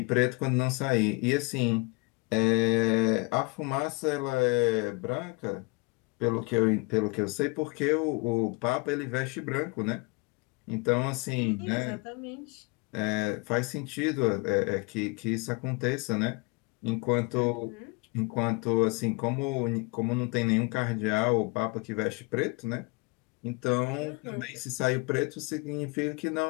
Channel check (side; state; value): right; quieter; 27.9 dB